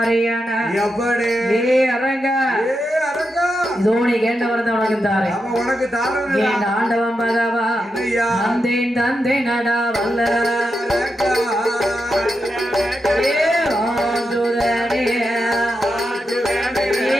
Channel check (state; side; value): normal; both; correlation 0.86